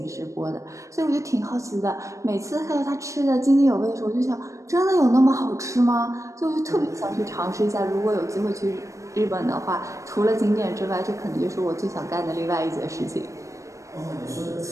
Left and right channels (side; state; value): left; late; 0.15 ms